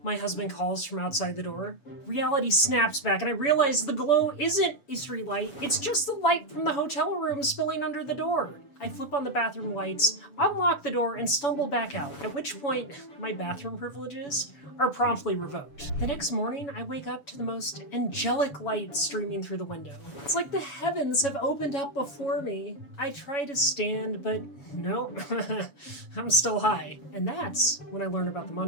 My husband calls from outside the door. Reality snaps back and I realize the glow isn't a streetlight, it's just the light from the hotel room spilling under the door. I flip on the bathroom lights, unlock the door, and stumble back out, at which point my bathroom privileges are promptly revoked. The next morning, I wake up to the most angelic light streaming through the window. It's like the heavens have opened up before me. I try to stand, but no, I'm still high. And that's when I learn about the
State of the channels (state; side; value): late; right; 7.1 ms